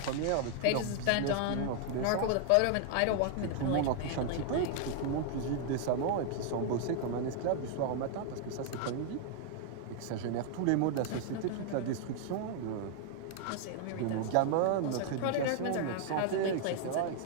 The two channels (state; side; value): different; both; correlation 0.00